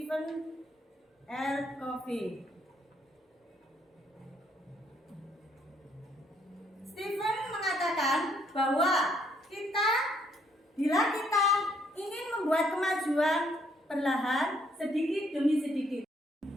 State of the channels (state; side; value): normal; both; correlation 0.69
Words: R. Covey? Stephen mengatakan bahwa bila kita ingin membuat kemajuan perlahan sedikit demi sedikit.